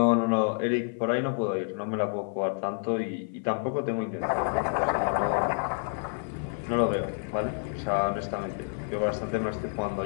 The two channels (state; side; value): silent; right; 59 dB below the other